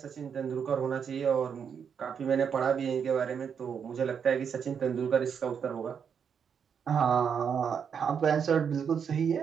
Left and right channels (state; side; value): quieter; left; 7.1 dB